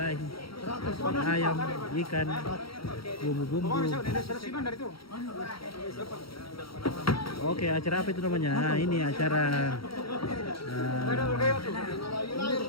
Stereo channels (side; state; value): right; late; 0.75 ms